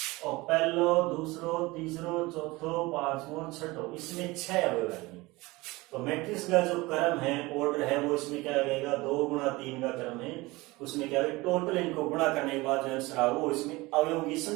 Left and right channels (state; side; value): quieter; left; 21.8 dB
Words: और पहलो दूसरो तीसरो चौथो पांचवो छठो, इसमें 6 अवयव है। तो मैट्रिक्स का जो क्रम है, ऑर्डर है, वो इसमें क्या लगेगा, 2 गुणा 3 का क्रम है, उसमें क्या है, टोटल इनको गुणा करने के बाद जो आंसर आएगा वो इसमें अवयवों की